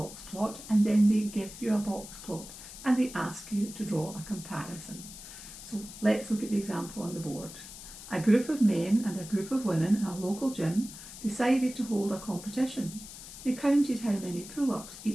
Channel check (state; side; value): noise; left; hiss, 14 dB below the sound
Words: plot, and then they give you a box plot and they ask you to draw a comparison. So let's look at the example on the board. A group of men and a group of women in a local gym decided to hold a competition. They counted how many pull-ups